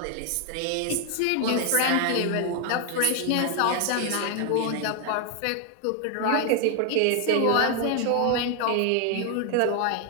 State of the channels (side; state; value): both; different; correlation 0.00